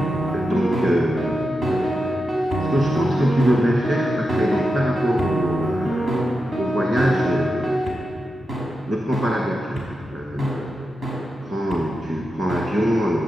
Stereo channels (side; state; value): both; normal; correlation 0.89